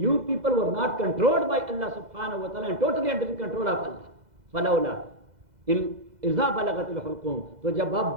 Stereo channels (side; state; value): left; late; 2.0 ms